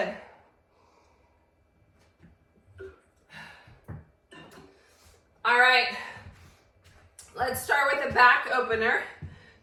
All right. Let's start with a back opener.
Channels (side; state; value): both; identical; correlation 1.00